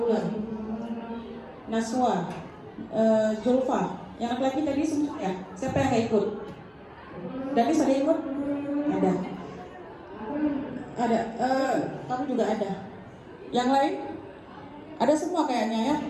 Naswa, Zulfa, yang laki-laki tadi semua ya? Siapa yang nggak ikut? Danis ada ikut? Ada. Ada. Kamu juga ada. Yang lain? Ada semua kayaknya ya?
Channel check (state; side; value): identical; both; correlation 1.00